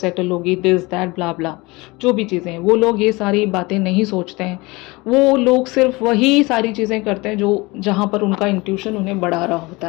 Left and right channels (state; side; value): quieter; right; 23.6 dB